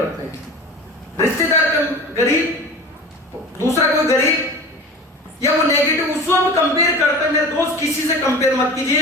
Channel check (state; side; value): normal; both; correlation 0.36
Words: हैं, रिश्तेदार गरीब, दूसरा कोई गरीब, या वो नेगेटिव उसको हम कंपेयर करते हैं। मेरे दोस्त किसी से कंपेयर मत